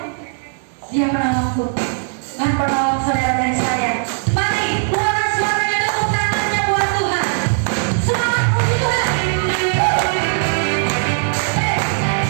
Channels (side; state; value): left; silent; 55 dB below the other